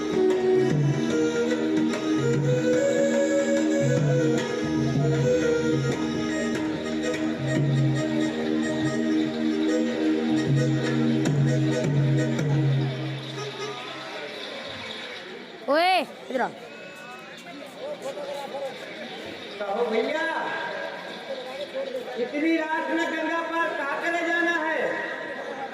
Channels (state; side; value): identical; both; correlation 1.00